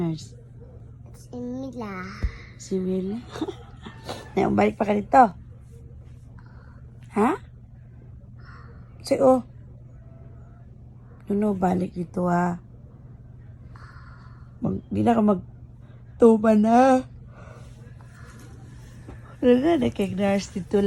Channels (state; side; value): identical; both; correlation 1.00